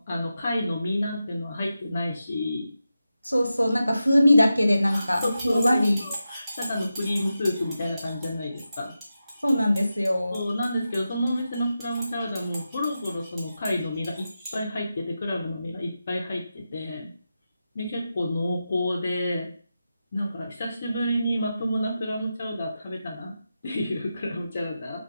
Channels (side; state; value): both; inverted; correlation -0.90